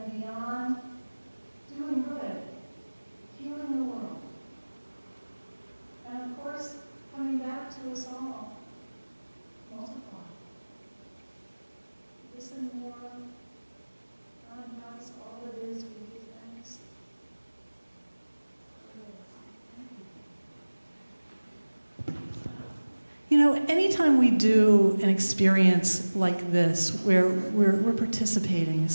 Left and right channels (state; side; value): inverted; both; correlation -1.00